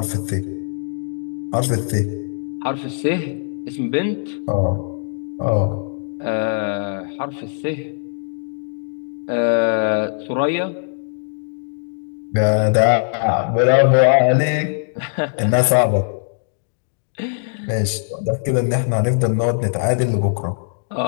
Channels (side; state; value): right; silent; digital silence